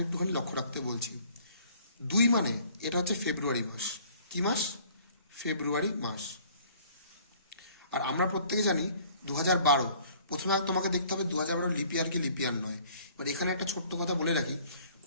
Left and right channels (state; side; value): inverted; both; correlation -0.55